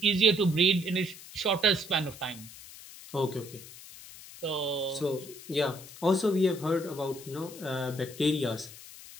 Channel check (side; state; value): left; noise; hiss, 16 dB below the sound